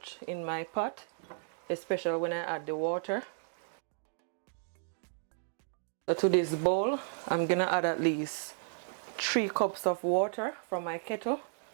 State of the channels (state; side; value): silent; left; digital silence